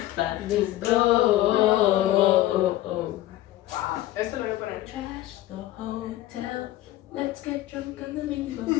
but let's go. Wow. Esto lo voy a poner. Trash the hotel. Let's get drunk on the window.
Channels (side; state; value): right; quieter; 15.0 dB